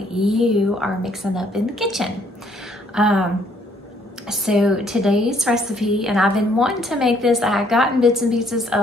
you are mixing up in the kitchen. So today's recipe, and I've been wanting to make this, I had gotten bits and pieces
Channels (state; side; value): normal; both; correlation 0.65